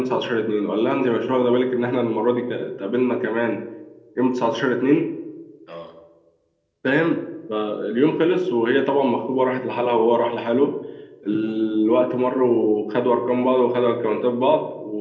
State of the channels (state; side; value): identical; both; correlation 1.00